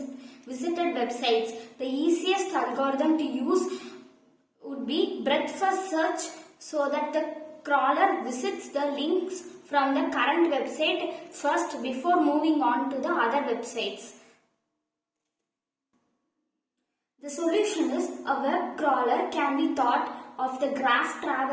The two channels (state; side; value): identical; both; correlation 1.00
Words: visited websites. The easiest algorithm to use would be breadth first search, so that the crawler visits the links from the current website first before moving on to the other websites. The solution is a web crawler can be thought of the graph